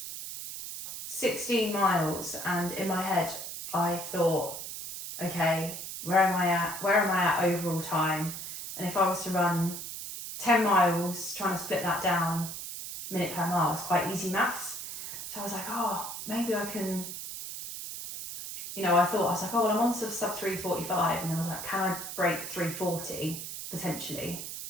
16 miles, and in my head, I thought, okay, where am I at overall time? And if I was to run 10 miles, trying to split that down minute per mile is quite easy maths. So I was like, oh, maybe I can, I was like, oh, well, I'm on sub 3:45, and I was like, can I break 3:40 potentially?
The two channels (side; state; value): right; noise; hiss, 8 dB below the sound